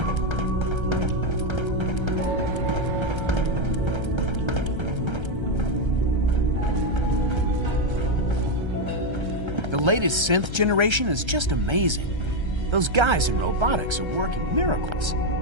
The latest synth generation is just amazing. Those guys in robotics are working miracles.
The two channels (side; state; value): left; late; 1.3 ms